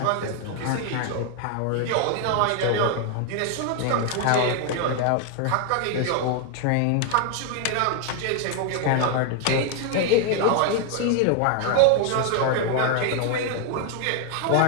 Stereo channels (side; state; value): both; different; correlation 0.01